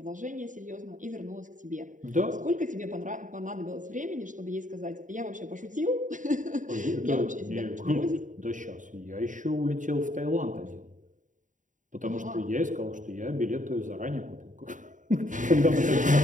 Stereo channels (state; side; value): late; left; 0.37 ms